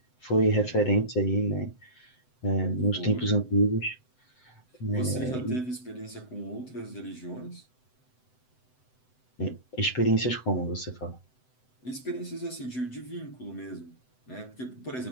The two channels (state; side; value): late; right; 7.9 ms